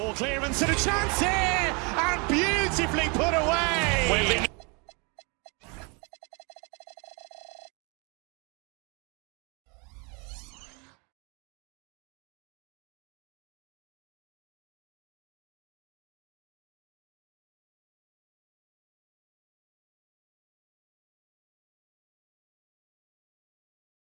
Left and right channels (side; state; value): left; quieter; 31.8 dB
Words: clearance and a chance here, and beautifully put away.